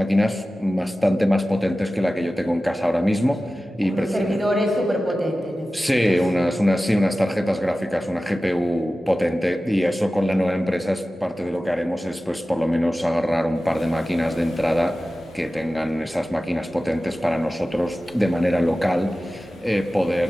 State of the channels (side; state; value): both; normal; correlation 0.95